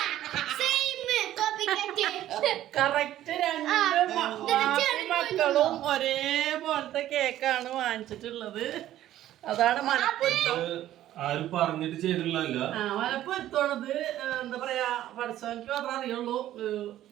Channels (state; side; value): quieter; left; 13.1 dB